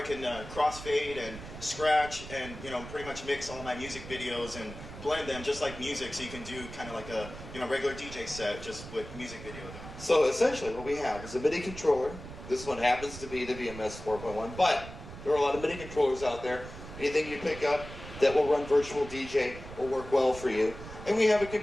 can crossfade and scratch and pretty much mix all my music videos and blend them just like music. So you can do kind of like a regular DJ set just with music video. So essentially what we have is a MIDI controller. This one happens to be the VMS 4.1, but there are a lot of MIDI controllers out there. Anything you pick up that will run Virtual DJ will work well for you. And we have a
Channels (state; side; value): noise; right; rumble, 13 dB below the sound